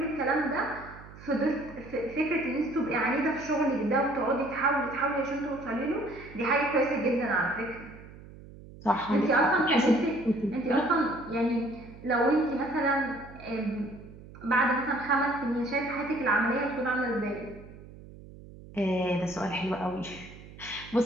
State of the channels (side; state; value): right; noise; hum, 18 dB below the sound